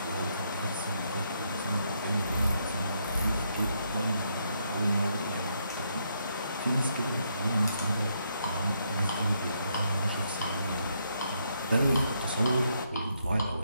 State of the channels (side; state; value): both; inverted; correlation -0.76